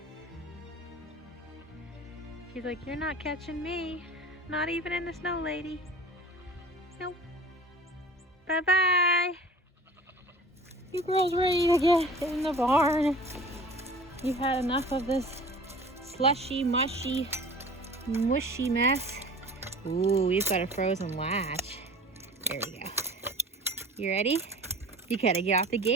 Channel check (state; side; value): normal; both; correlation 0.43